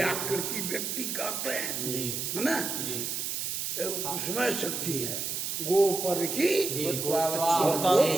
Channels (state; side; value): noise; right; hiss, 2 dB below the sound